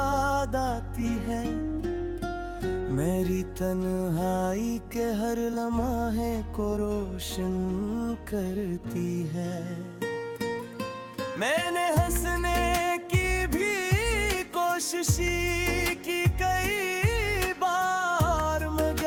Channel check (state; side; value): identical; both; correlation 1.00